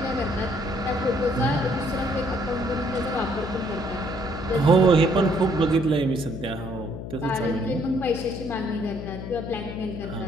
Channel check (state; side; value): noise; left; hum, 8 dB below the sound